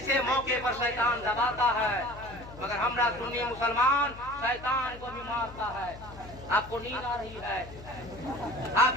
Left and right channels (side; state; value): left; noise; hum, 16 dB below the sound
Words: मौके पर शैतान दबाता है, मगर हमरा सुन्नी मुसलमान शैतान को भी मारता है। आपको नींद आ रही है? आप